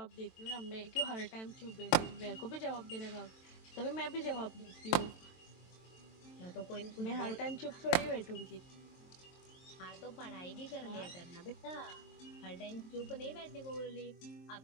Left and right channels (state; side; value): late; right; 23 ms